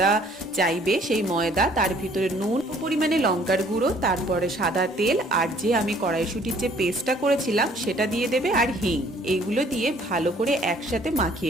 চাইবে সেই ময়দা, তার ভিতরে নুন, পরিমাণে লঙ্কার গুঁড়ো, তারপরে সাদা তেল, আর যে আমি কড়াইশুঁটির যে পেস্টটা করেছিলাম সেটা দিয়ে দেবে, আর হিং। এইগুলো দিয়ে ভালো করে একসাথে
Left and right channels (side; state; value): both; normal; correlation 0.59